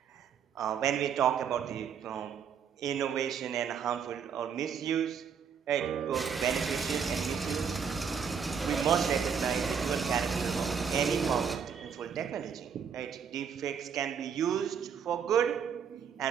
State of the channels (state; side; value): quieter; left; 7.0 dB